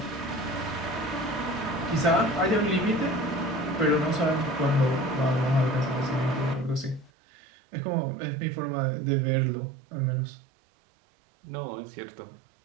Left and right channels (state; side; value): drops out; left; at 7.1 s